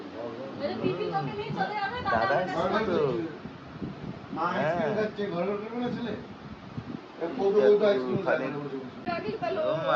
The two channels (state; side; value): identical; both; correlation 1.00